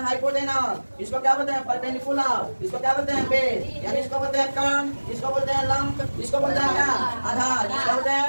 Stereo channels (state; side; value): inverted; both; correlation -1.00